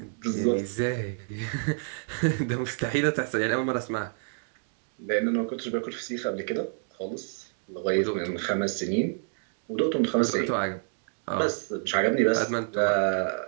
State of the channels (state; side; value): silent; left; digital silence